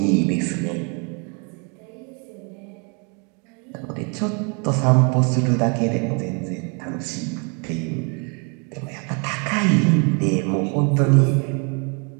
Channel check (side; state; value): left; quieter; 35.2 dB